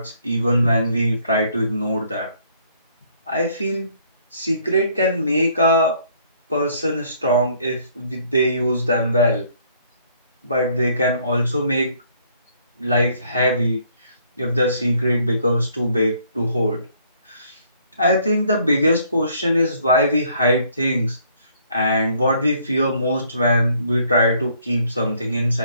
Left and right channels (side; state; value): both; inverted; correlation -0.64